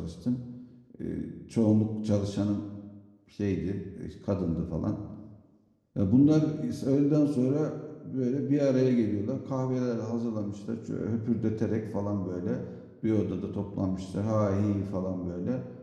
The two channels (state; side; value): identical; both; correlation 1.00